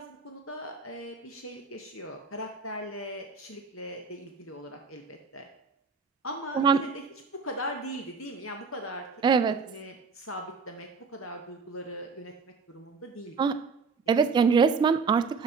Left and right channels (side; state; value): left; quieter; 4.9 dB